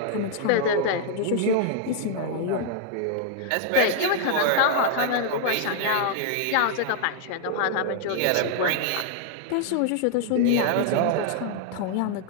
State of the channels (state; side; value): different; both; correlation -0.01